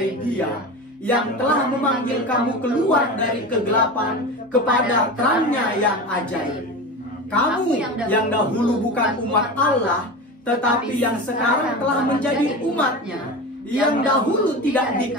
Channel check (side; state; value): both; normal; correlation 0.27